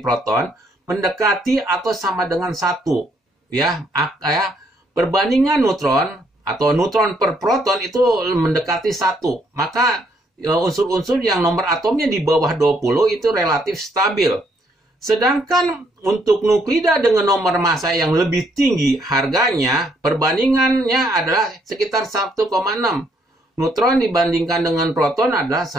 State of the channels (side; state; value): both; normal; correlation 0.70